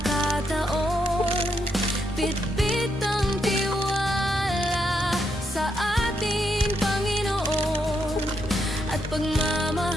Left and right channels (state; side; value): normal; both; correlation 0.79